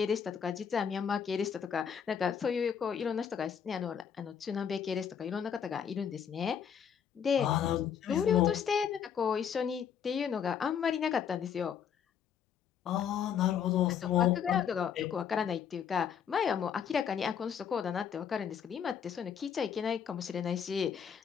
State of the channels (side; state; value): right; quieter; 7.9 dB